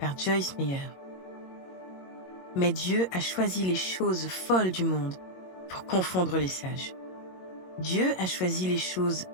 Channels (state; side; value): late; right; 22 ms